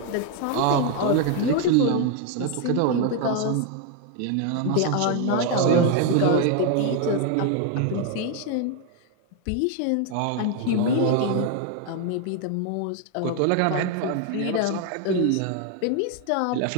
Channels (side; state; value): both; different; correlation 0.01